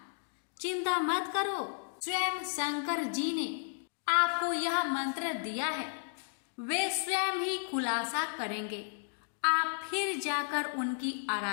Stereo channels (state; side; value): silent; right; digital silence